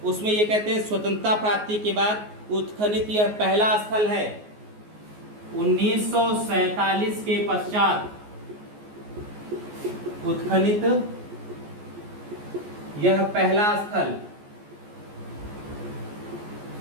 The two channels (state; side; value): late; left; 14 ms